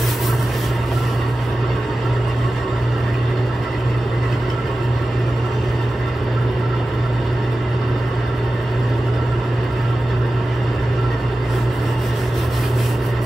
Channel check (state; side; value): normal; both; correlation 0.95